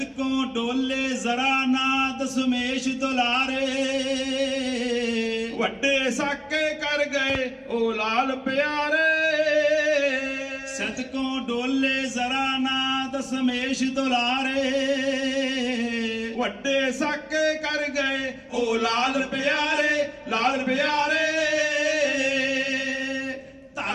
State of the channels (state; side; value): identical; both; correlation 1.00